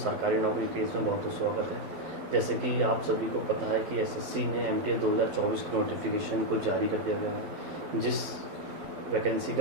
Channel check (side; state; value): left; late; 12 ms